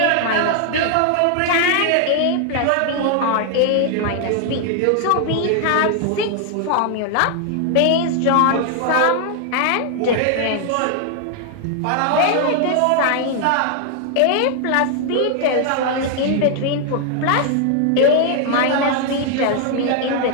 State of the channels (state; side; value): different; both; correlation 0.00